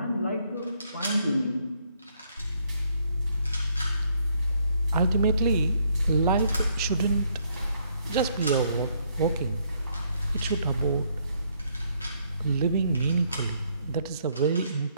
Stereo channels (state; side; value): inverted; both; correlation -0.70